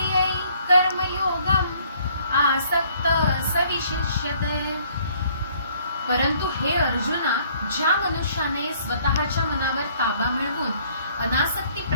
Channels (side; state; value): both; inverted; correlation -0.61